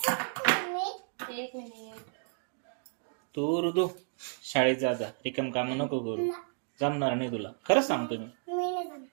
तू ऋतू शाळेत जा जा. रिकाम काम नको करू. जमणार नाही तुला. खरंच सांगतो मी.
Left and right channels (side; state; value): left; silent; 56 dB below the other